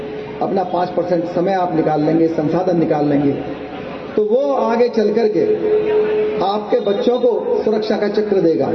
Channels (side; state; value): both; identical; correlation 1.00